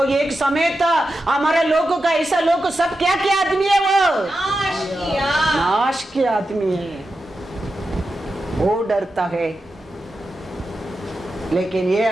एक समय था हमारे लोगों का, ऐसा लोग सब क्या क्या आदमी है, वो नाश के आदमी है। वो डरता है, लेकिन ये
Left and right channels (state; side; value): normal; both; correlation 0.90